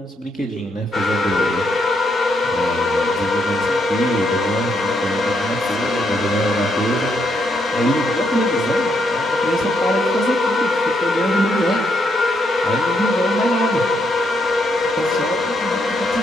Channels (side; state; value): both; normal; correlation 0.77